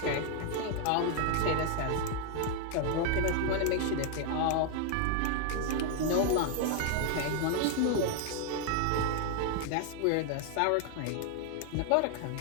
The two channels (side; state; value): both; different; correlation 0.00